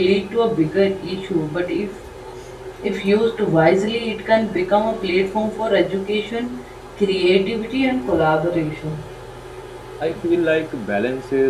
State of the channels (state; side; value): identical; both; correlation 1.00